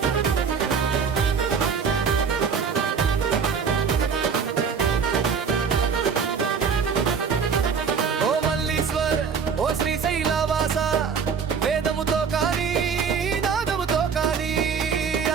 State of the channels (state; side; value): quieter; left; 6.2 dB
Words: ఓ శ్రీశైలవాస వేదముతో కానీ నాదముతో కానీ